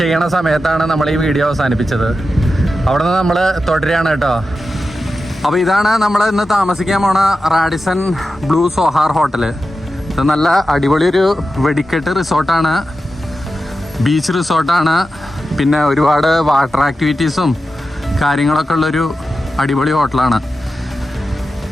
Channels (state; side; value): normal; both; correlation 0.91